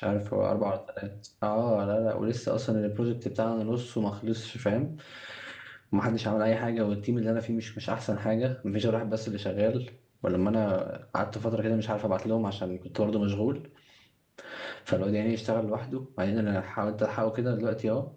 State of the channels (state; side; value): identical; both; correlation 1.00